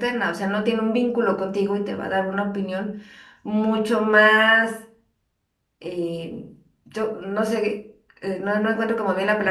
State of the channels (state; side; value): identical; both; correlation 1.00